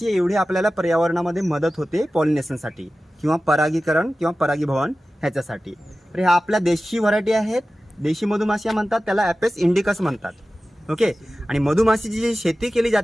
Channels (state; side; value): normal; both; correlation 0.95